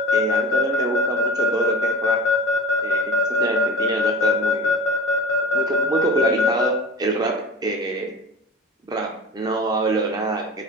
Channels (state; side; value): normal; both; correlation 0.36